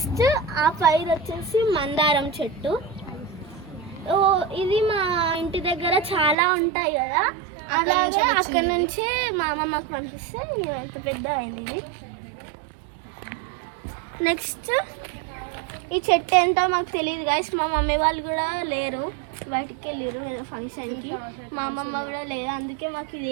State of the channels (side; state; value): left; drops out; at 6.4 s